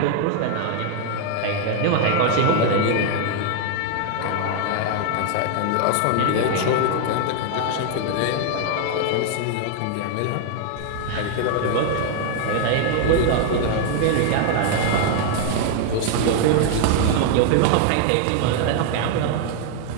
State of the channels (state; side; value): different; both; correlation 0.00